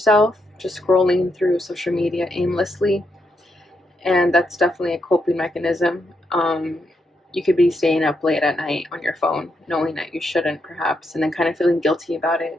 just scrolling through social media aimlessly, and that's definitely a coping mechanism. You could be staying up late at night on your phone, knowing that you shouldn't perhaps, and then kind of feeling guilty about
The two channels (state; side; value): normal; both; correlation 0.81